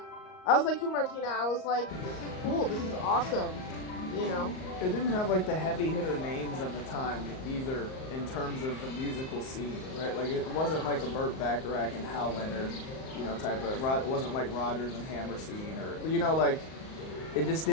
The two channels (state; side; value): late; right; 38 ms